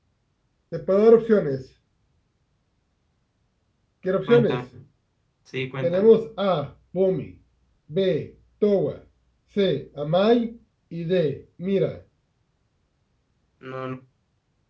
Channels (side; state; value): both; identical; correlation 1.00